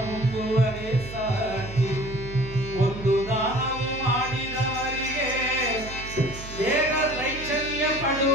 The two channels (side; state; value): right; noise; hum, 12 dB below the sound